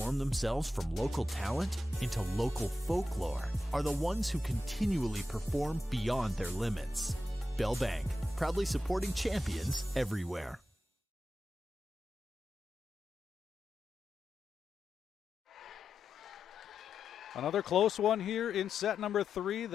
themselves from local talent into local folklore are the ones who continually perform beyond their limits. Bell Bank, proudly supporting champions everywhere. Another close one here in set number 3.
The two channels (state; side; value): normal; both; correlation 0.89